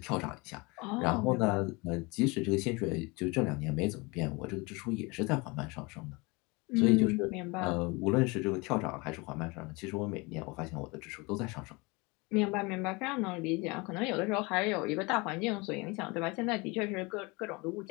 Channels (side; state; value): right; quieter; 26.4 dB